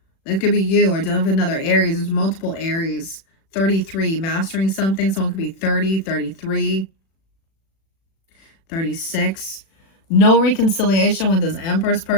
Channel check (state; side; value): late; right; 36 ms